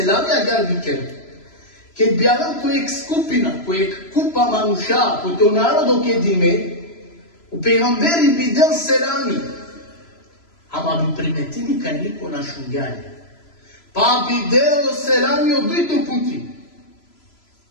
gar bi kerut. Kad bi jedan kojeg skupina, kojeg kupa manuša, ko to narodo kad ime, u pejgamberi bi del selami, ama bi primetili kaj niko na šungjanje. Pa bi del selami od dojto puti.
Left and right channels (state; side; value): late; right; 3.0 ms